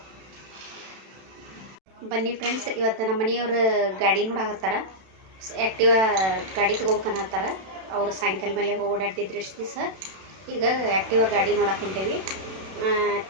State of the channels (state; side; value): late; left; 32 ms